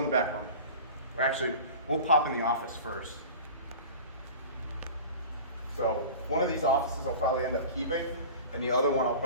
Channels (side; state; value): both; inverted; correlation -0.37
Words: the back room. Or actually, we'll pop in the office first. So one of these offices I'll probably end up keeping, and the other one I'll